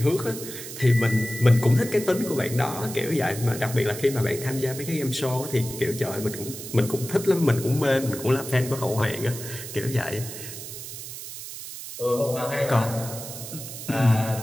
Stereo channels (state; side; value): noise; right; hiss, 10 dB below the sound